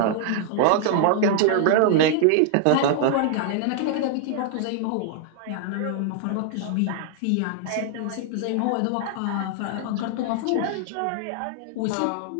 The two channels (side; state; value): both; different; correlation 0.00